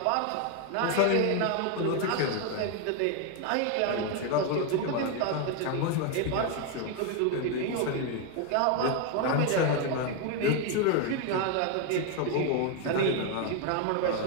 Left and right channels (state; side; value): different; both; correlation 0.01